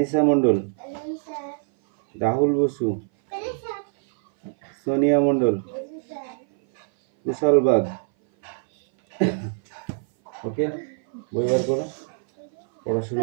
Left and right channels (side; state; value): left; silent; 59 dB below the other